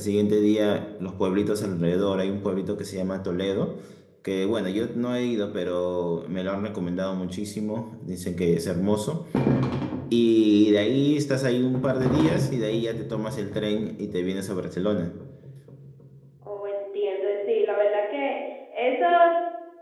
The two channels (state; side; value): identical; both; correlation 1.00